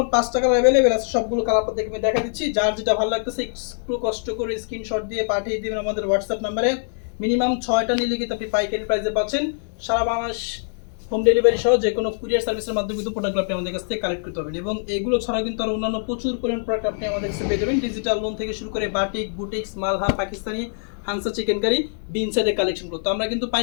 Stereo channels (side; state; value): right; silent; 63 dB below the other